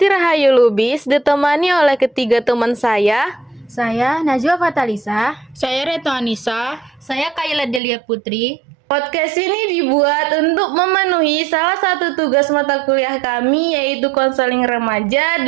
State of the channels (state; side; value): drops out; left; at 7.8 s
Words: Rahayu Lubis ditemani oleh ketiga teman saya. Saya Najwa Fatalisa. Saya Reto Anissa. Saya Kayla Delia Putri. Podcast ini dibuat untuk memenuhi salah satu tugas mata kuliah kami, yaitu konseling remaja